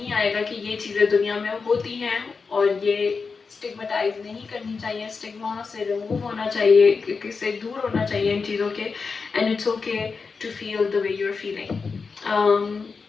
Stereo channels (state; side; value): quieter; right; 4.9 dB